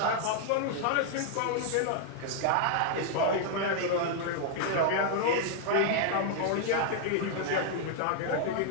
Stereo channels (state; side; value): different; both; correlation 0.00